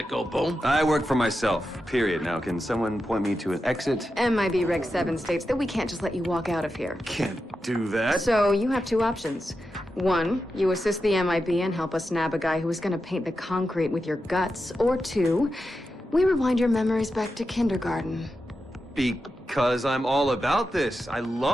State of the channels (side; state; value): both; normal; correlation 0.89